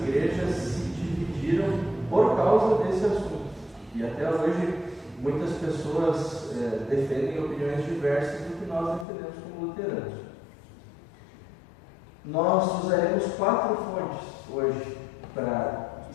se dividiram por causa desse assunto. E até hoje muitas pessoas defendem opiniões diversas do que nós defendemos como luteranos. Nós usaremos 4 fontes hoje para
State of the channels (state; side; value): drops out; right; at 9.1 s